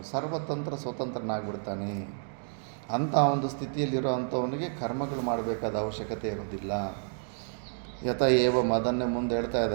ಸರ್ವತಂತ್ರ ಸ್ವತಂತ್ರನಾಗ್ಬಿಡ್ತಾನೆ. ಅಂಥ ಒಂದು ಸ್ಥಿತಿಯಲ್ಲಿರೋ ಅಂಥವನಿಗೆ ಕರ್ಮಗಳು ಮಾಡಬೇಕಾದ ಅವಶ್ಯಕತೆ ಇರೋದಿಲ್ಲ. ಯಥ ಏವಂ ಅದನ್ನೇ ಮುಂದೆ ಹೇಳ್ತಾ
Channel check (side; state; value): left; silent; digital silence